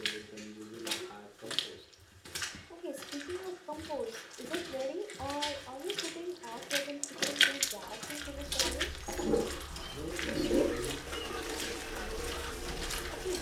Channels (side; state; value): both; identical; correlation 1.00